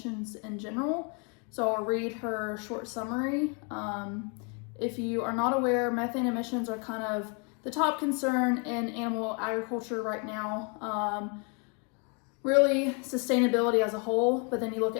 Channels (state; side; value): quieter; right; 36.0 dB